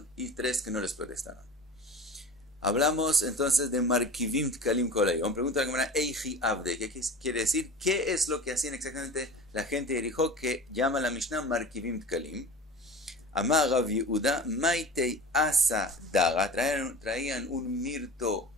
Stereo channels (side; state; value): both; normal; correlation 0.36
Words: y 3 que no les protestaron. Hablamos entonces de Markivim Tkalim Kol Hayom. Pregunta la Gemara, Eiji Abde, ¿qué quiere decir? ¿Qué es lo que hacían exactamente la gente de Jericó que llama la Mishnah Markivim Tkalim? Amar Rav Yehuda, Maitei Asa Daga, traían un mirto